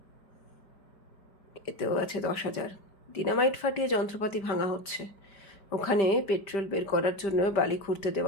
এতেও আছে 10,000। ডিনামাইট ফাটিয়ে যন্ত্রপাতি ভাঙা হচ্ছে, ওখানে পেট্রোল বের করার জন্য বালি খুঁড়তে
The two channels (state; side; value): late; right; 5.0 ms